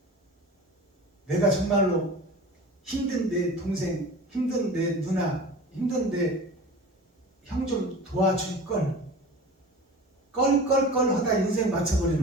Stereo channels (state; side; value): normal; both; correlation 0.37